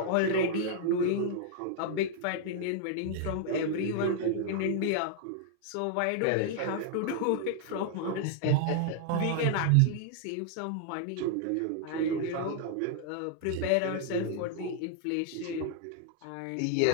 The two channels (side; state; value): both; different; correlation 0.00